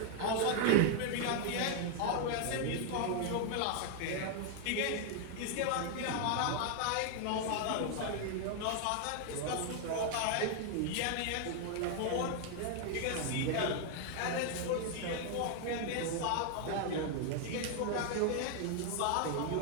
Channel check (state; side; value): different; both; correlation 0.00